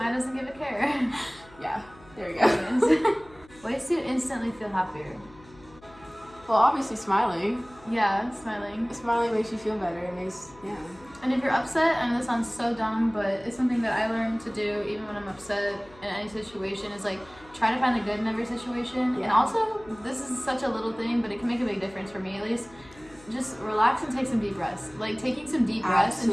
doesn't give a care. Yeah, there we go. Ways to instantly feel happier. Well, obviously smiling. Yeah, smiling. Smiling makes you feel better. It makes, yeah. And if you're upset, I know this sounds so dumb, but it's something that I learned to do even when I'm upset in any situation, is like try to find the good in every situation. Yeah. And also, this is such a little thing, but it can make a big difference for me at least. Just relax and take some deep breaths. Like taking some deep breaths and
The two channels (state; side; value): noise; left; hum, 24 dB below the sound